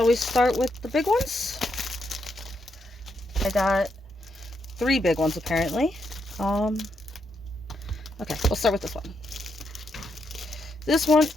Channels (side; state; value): both; normal; correlation 0.80